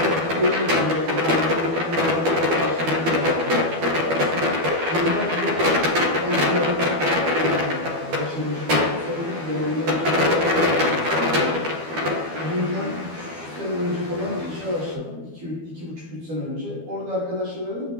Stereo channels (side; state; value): left; late; 12 ms